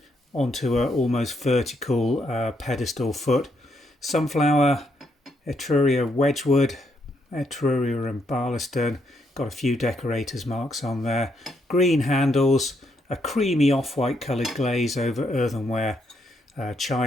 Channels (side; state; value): both; normal; correlation 0.76